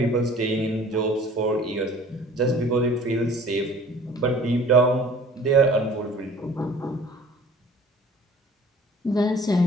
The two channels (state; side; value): normal; both; correlation 0.50